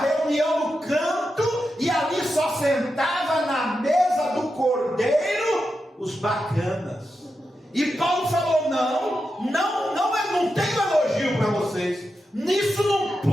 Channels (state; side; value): normal; both; correlation 0.88